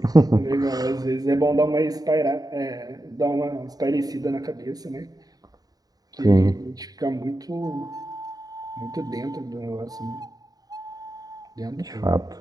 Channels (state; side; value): late; left; 0.18 ms